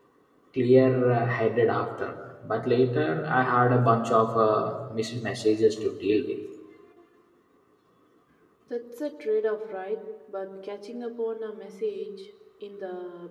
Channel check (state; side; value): identical; both; correlation 1.00